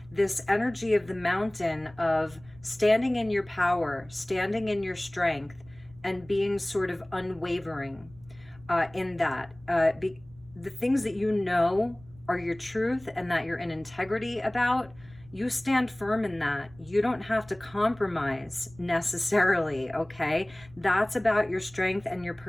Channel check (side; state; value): right; noise; rumble, 24 dB below the sound